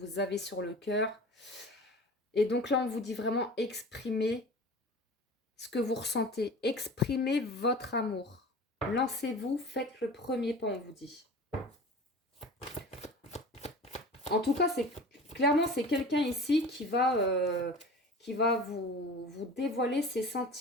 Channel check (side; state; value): both; normal; correlation 0.38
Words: avez sur le cœur. Et donc là, on vous dit vraiment exprimer ce que vous ressentez. Exprimez votre amour. Lancez-vous, faites le premier pas, on vous dit. En tout cas, clairement, c'est quelqu'un ici qui va vous dévoiler ses